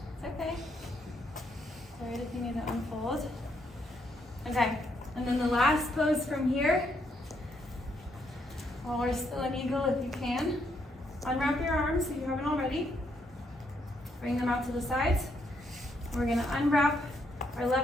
okay. It's alright if you need to unfold. Okay, and then the last pose from here, while we're still in eagle if you can, unwrap your arms if you haven't already. Bring them out to the sides. We're gonna unwrap our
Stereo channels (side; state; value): both; normal; correlation 0.75